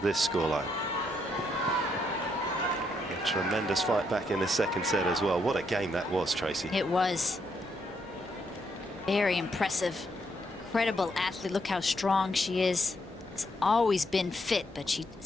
this scoreline. A tremendous fight back in the second set as well. What a game that was, Tracy. It was. Very impressive. Incredible athlete. Look how strong she is. Has always been fit, but she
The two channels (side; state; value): both; normal; correlation 0.76